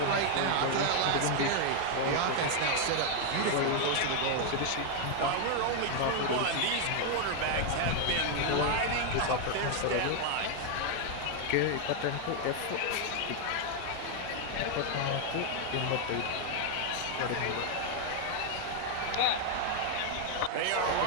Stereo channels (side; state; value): both; different; correlation 0.00